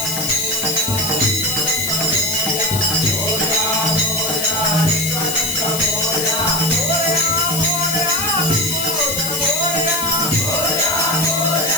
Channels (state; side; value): noise; left; hiss, 3 dB below the sound